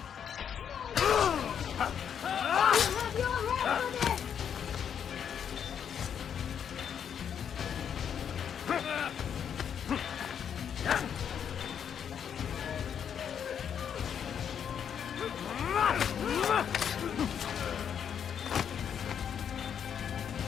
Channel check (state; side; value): quieter; right; 8.2 dB